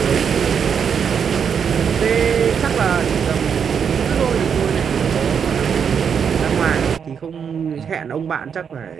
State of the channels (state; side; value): quieter; left; 7.1 dB